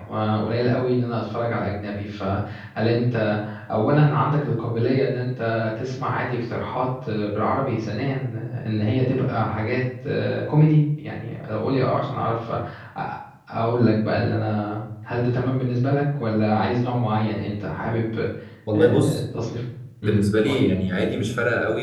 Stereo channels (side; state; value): both; identical; correlation 1.00